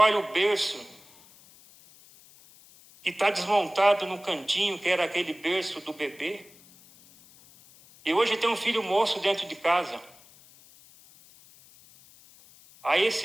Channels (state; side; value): noise; left; hiss, 25 dB below the sound